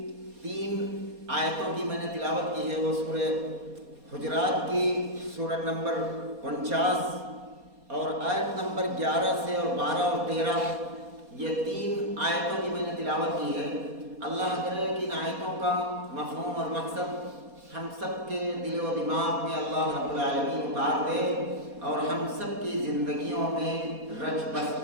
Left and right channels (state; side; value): late; left; 4.2 ms